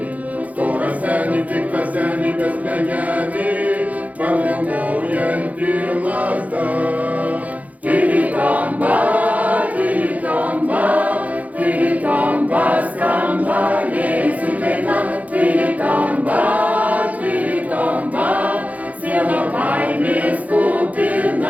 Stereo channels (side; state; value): left; late; 0.073 ms